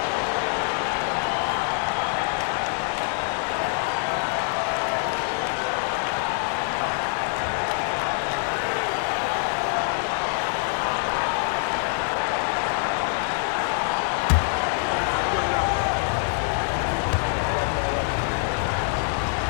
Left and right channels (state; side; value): silent; right; 58 dB below the other